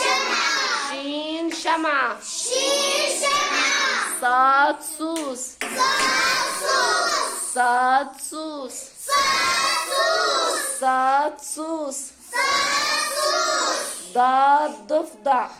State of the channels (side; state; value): both; identical; correlation 1.00